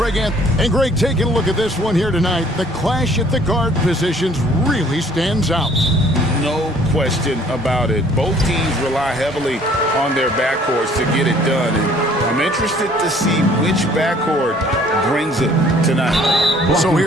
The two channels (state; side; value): normal; both; correlation 0.57